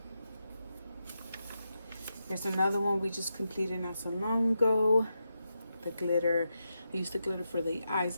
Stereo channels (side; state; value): both; inverted; correlation -0.86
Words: Here's another one we just completed not so long ago. The glitter. I used the glitter for the eyes